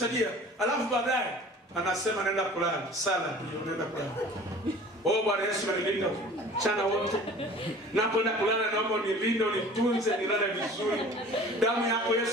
Alafu baadaye anasema nenda kulala, sala nenda kulala. Bwana Yesu anilinda mchana wote. Napoenda kulala naomba unilinde, unitunze, nilale vizuri. Damu yako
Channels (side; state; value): both; normal; correlation 0.45